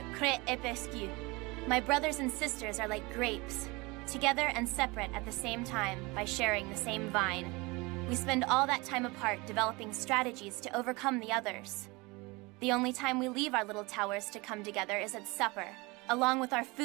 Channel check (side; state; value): left; quieter; 24.8 dB